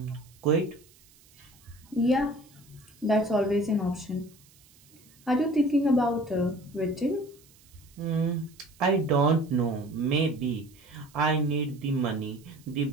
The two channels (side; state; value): right; noise; hiss, 28 dB below the sound